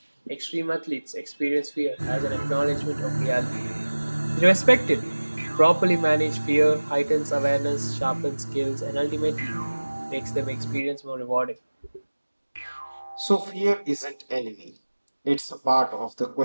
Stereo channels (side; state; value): both; inverted; correlation -1.00